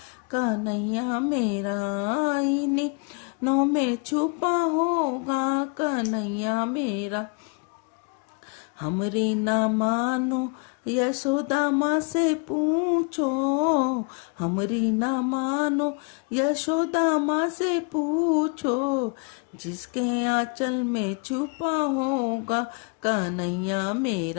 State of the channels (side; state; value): right; quieter; 34.2 dB